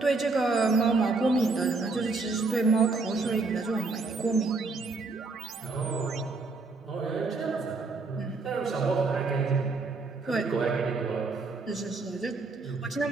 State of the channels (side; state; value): left; quieter; 3.8 dB